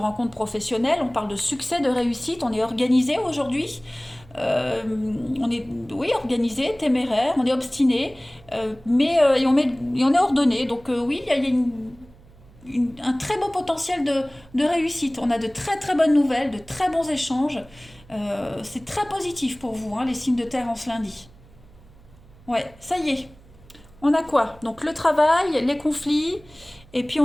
professionnelles, on parle de succès, de réussite. On est organisé aujourd'hui. On est organisé, téméraire, on est obstiné, et on est ordonné. Donc oui, il y a un très beau potentiel de réussite. On a de très très bonnes nouvelles, de très bons échanges. C'est très positif pour vous, hein, les signes de terre en ce lundi. Ouais, ça y est. On a quoi? Donc le travail, les conflits, et puis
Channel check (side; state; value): right; noise; hum, 25 dB below the sound